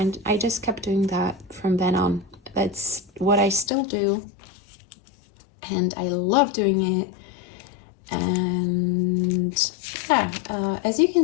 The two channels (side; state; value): right; drops out; at 3.7 s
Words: I just kept doing that from then on. That's what I still do, and I love doing it. And yeah, as you can